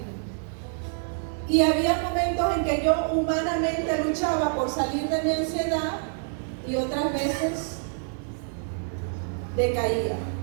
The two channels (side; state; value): left; silent; digital silence